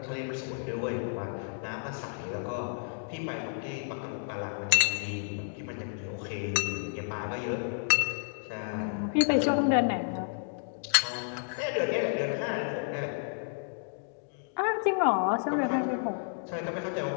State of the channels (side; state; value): right; silent; digital silence